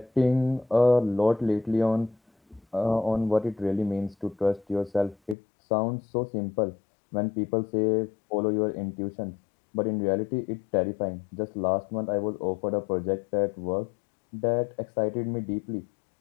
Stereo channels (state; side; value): drops out; right; at 5.4 s